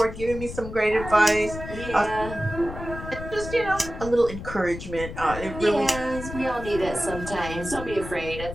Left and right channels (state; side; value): noise; left; rumble, 10 dB below the sound